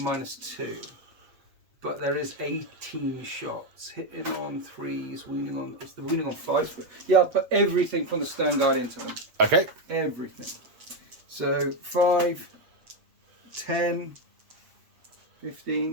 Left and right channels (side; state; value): left; late; 8.1 ms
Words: But there is 18 shots. Hitting on 3s, wounding on... It's the wounding on 5s. Yeah, I'll put everything from the Stern Guard into them. Okay. Everything. So 5, 10,